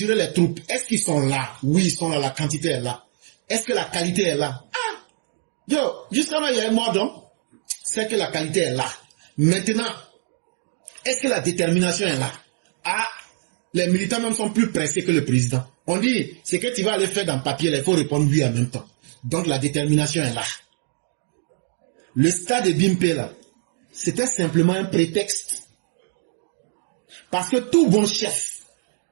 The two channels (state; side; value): silent; left; digital silence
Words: les troupes. Est-ce qu'ils sont là? Oui, ils sont là. La quantité est là. Est-ce que la qualité est là? Ah! Yo, jusqu'à là, il y a un mot donc. C'est que la qualité est là. Maintenant, est-ce que la détermination est là? Ah! Les militants même sont plus pressés que le président. On dit, c'est que tu vas aller faire dans le papier, il faut répondre oui en même temps. Donc la détermination est là. Le stade de Bimpe là, c'était simplement un prétexte. Parce que tout bon chef,